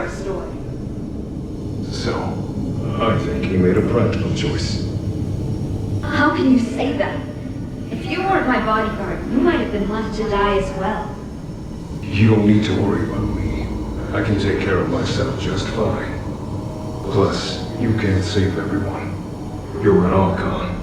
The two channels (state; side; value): identical; both; correlation 1.00